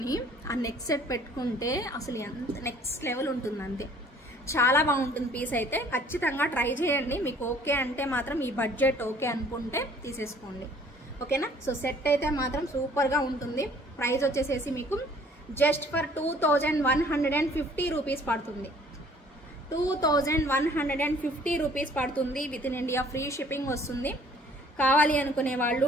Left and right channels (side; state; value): both; normal; correlation 0.56